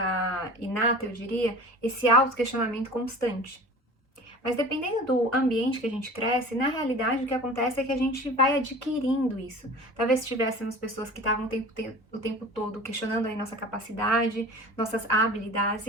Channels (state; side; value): normal; both; correlation 0.39